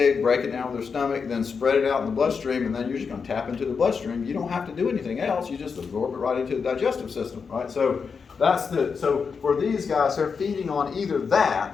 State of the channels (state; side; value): quieter; right; 5.6 dB